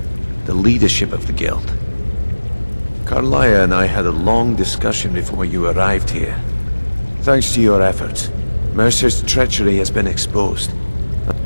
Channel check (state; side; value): inverted; both; correlation -1.00